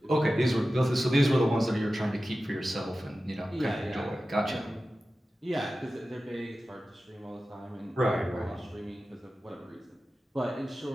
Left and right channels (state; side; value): normal; both; correlation 0.94